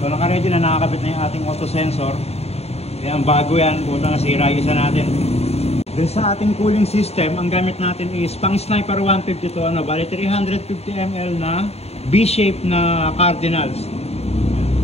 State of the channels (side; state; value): right; late; 0.30 ms